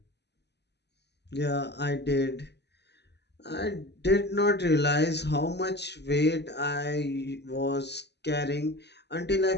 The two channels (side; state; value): right; late; 0.49 ms